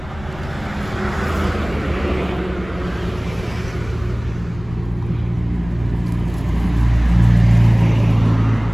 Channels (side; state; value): left; noise; rumble, 17 dB below the sound